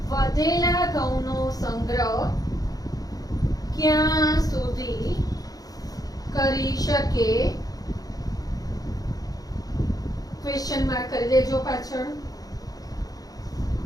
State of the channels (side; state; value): right; late; 0.18 ms